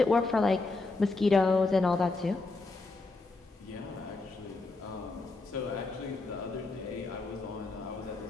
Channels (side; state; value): right; quieter; 3.5 dB